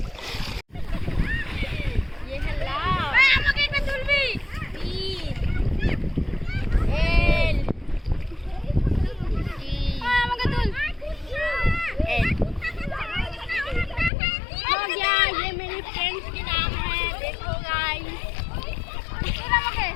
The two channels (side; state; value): right; drops out; at 14.1 s